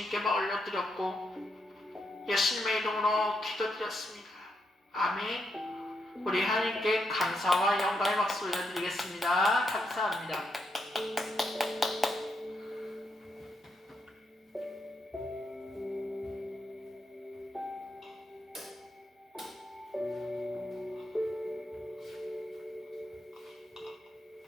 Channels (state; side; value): normal; both; correlation 0.81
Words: 올려드렸고, 예수님의 이름으로 기도드렸습니다. 아멘. 우리 하나님께 감사와 영광의 박수 올려드리겠습니다. 감사합니다.